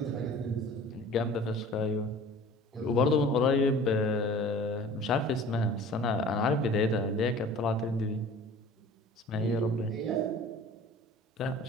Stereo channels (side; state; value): both; normal; correlation 0.45